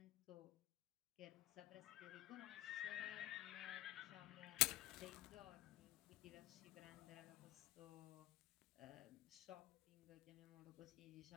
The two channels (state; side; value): quieter; right; 17.2 dB